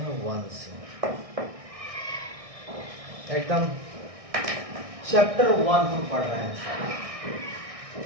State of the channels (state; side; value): late; left; 1.6 ms